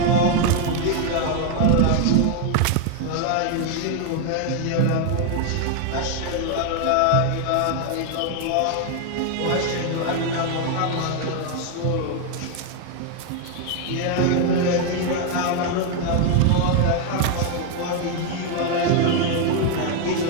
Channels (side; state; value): both; different; correlation 0.00